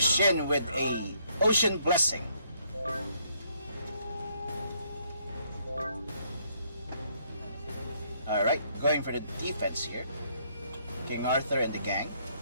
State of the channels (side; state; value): both; inverted; correlation -0.70